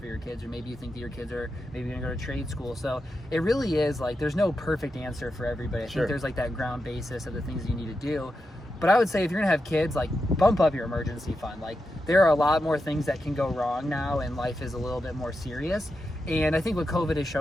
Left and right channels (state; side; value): normal; both; correlation 0.88